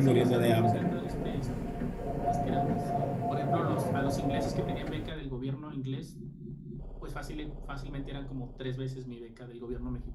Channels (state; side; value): identical; both; correlation 1.00